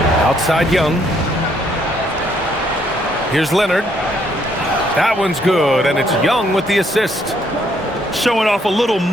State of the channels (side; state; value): both; normal; correlation 0.69